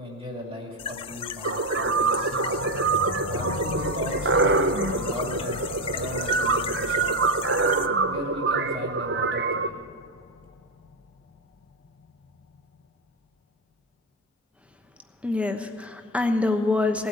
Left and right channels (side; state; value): both; normal; correlation 0.13